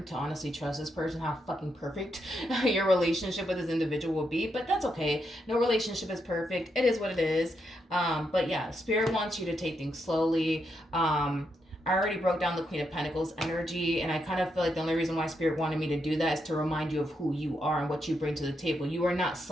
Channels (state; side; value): normal; both; correlation 0.81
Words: to honestly trust this person, how fucking perfect your relationship with this individual will be. But that's okay. No relationship is perfect. It is what it is. But yeah, Spirit wants you to take things slowly. I already broke down the Queen of Pentacles energy, and I kind of feel like the only reason why Spirit wanted me to do that is to remind you of who you are and what you bring to the table. You are not